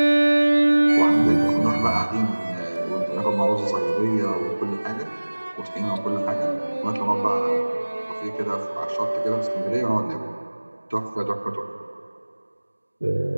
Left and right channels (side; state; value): both; inverted; correlation -1.00